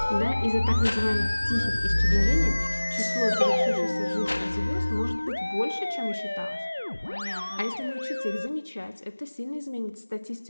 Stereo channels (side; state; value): both; inverted; correlation -1.00